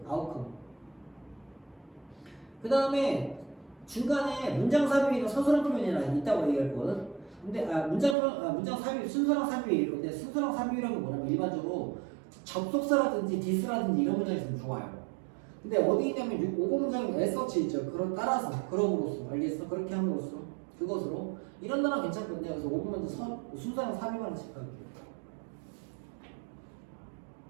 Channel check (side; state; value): left; drops out; at 8.2 s